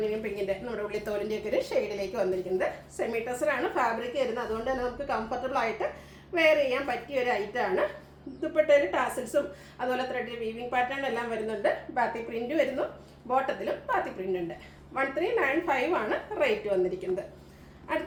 പിങ്കിൻ്റെ നമ്മുടെ ഉള്ളിത്തോലിൻ്റെ ഒക്കെ ഒരു ഷെയ്ഡിലേക്ക് വന്നിരിക്കുന്നത്. സെമി ടെസറാണ് ഫാബ്രിക് വരുന്നത്. അതുകൊണ്ട് തന്നെ നമുക്ക് കംഫർട്ടബിൾ ആയിട്ട് വെയർ ചെയ്യാൻ പറ്റിയ ഒരു ഐറ്റമാണ്. ദുപ്പട്ടയിൽ ടാസിൽസും അതുപോലെ ത്രെഡ് വീവിംഗ് പാറ്റേൺ എല്ലാം വരുന്നുണ്ട്. ബാത്തിക് പ്രിന്റ് വരുന്നു, ബോട്ടത്തിലും ബാത്തിക് പ്രിന്റ് ഉണ്ട്. 1395 ആണ് റേറ്റ് വന്നിരിക്കുന്നത്.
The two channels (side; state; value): both; identical; correlation 1.00